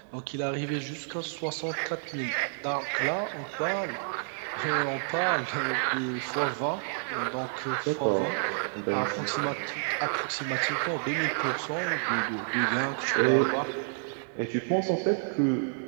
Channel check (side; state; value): left; silent; digital silence